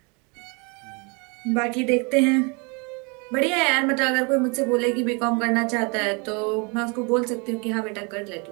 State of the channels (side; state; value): left; quieter; 31.7 dB